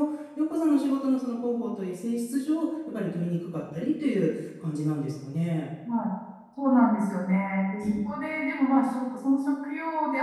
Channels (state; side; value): identical; both; correlation 1.00